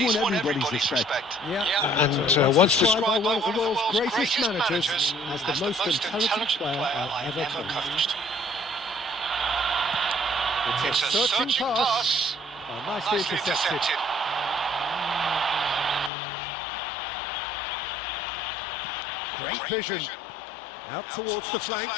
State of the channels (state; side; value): drops out; right; at 16.1 s